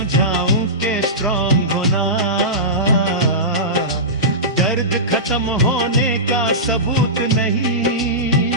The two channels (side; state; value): both; normal; correlation -0.17